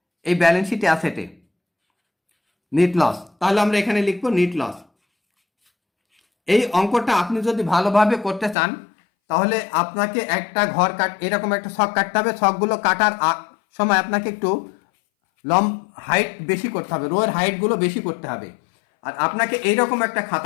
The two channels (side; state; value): right; drops out; at 8.6 s